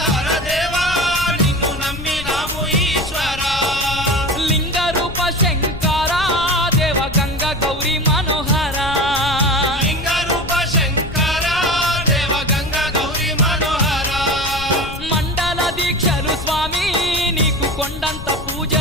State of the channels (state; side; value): noise; left; rumble, 10 dB below the sound